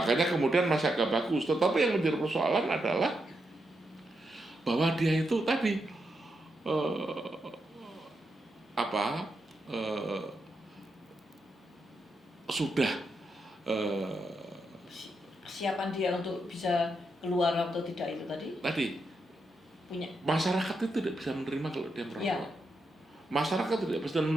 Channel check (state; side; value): normal; both; correlation 0.84